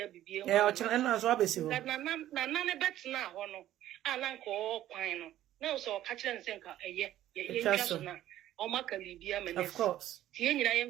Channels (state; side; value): quieter; left; 13.1 dB